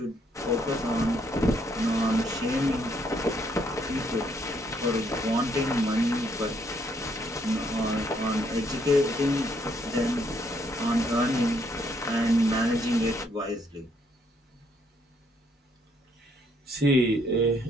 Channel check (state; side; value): normal; both; correlation 0.70